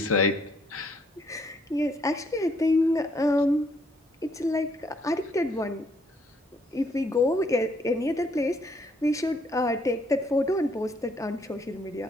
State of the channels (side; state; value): both; normal; correlation 0.68